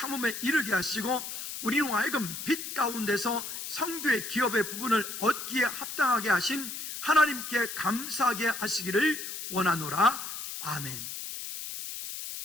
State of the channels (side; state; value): left; noise; hiss, 7 dB below the sound